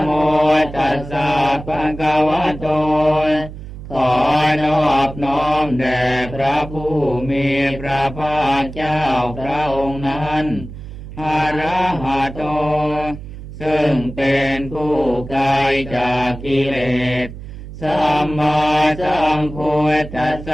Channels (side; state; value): right; noise; hum, 12 dB below the sound